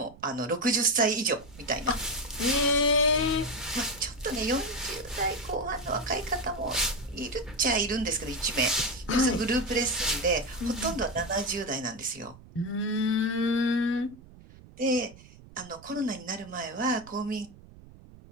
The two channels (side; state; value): right; noise; rumble, 21 dB below the sound